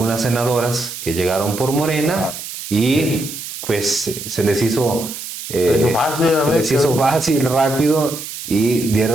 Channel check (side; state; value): right; noise; hiss, 9 dB below the sound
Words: senadoras que llegaron por Morena y pues se les hizo les hizo fácil, rápido, y